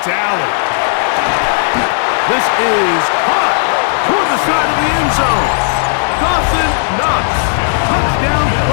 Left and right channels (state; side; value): silent; right; digital silence